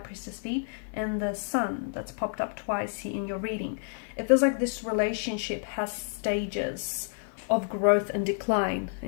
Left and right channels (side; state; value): right; silent; 58 dB below the other